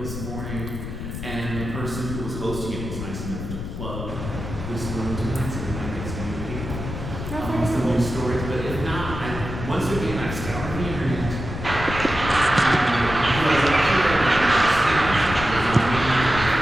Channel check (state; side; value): noise; left; rumble, 7 dB below the sound